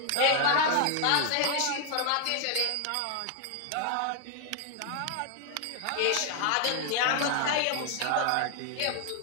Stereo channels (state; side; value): different; both; correlation 0.00